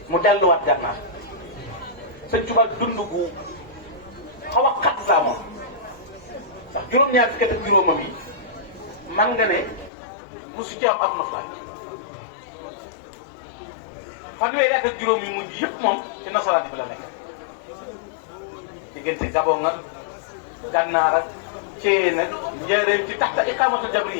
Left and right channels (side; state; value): right; drops out; at 9.9 s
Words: mu delluwaat Gànnaar sëñ Tuubaa dund gu xaw a xat saa moom ndax juróom-ñaar fukki at ak juróomam yi man nga ne mosu ci am ak noflaay fanweeri at ak juróom yi mujj yëpp moom ci nasaraan bi la nekk diggante Gabon nga Gànnaar ak Thièyène nag njëriñ ci tax la iqaamatu